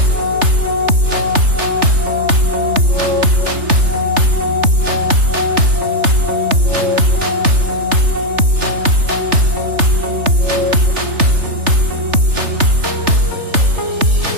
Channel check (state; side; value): late; left; 3.3 ms